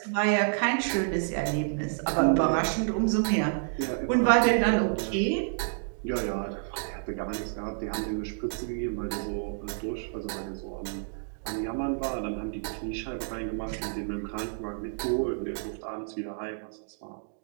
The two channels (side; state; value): left; silent; digital silence